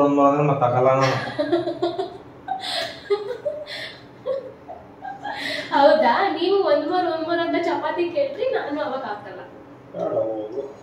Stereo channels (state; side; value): identical; both; correlation 1.00